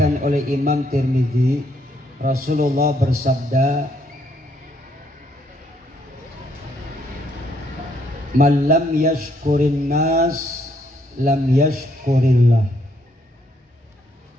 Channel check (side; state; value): both; normal; correlation 0.71